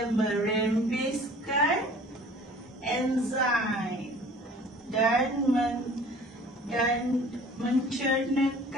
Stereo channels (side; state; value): both; normal; correlation 0.49